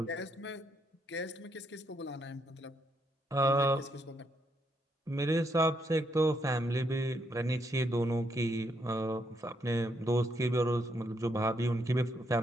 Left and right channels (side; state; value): both; normal; correlation 0.76